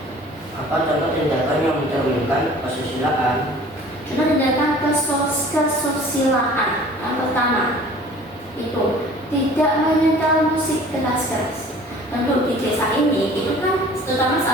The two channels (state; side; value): normal; both; correlation 0.48